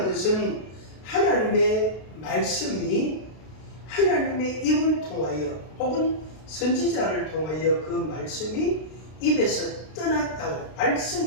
것은 하나님의 말씀이 하나님의 입을 통하여 혹은 선지자를 통하여 그 말씀이 입에서 떠났다고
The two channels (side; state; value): right; late; 32 ms